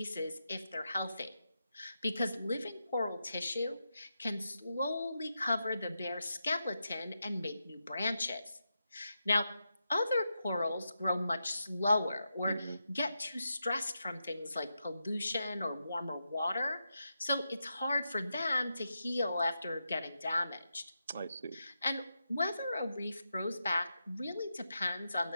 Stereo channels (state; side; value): inverted; both; correlation -0.87